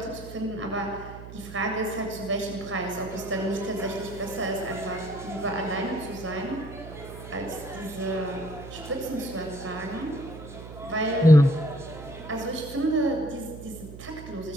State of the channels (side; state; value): right; noise; hum, 13 dB below the sound